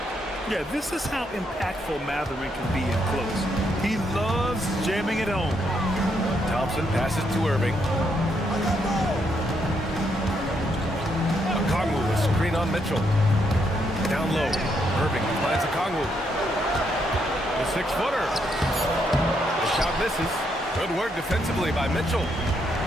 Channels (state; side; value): normal; both; correlation 0.76